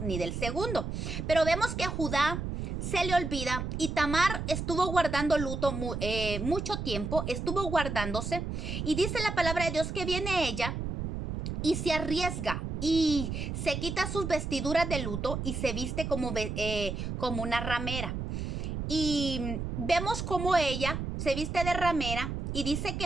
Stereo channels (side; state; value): right; noise; rumble, 4 dB below the sound